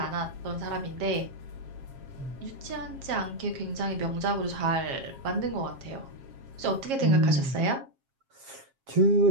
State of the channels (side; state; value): left; late; 7.4 ms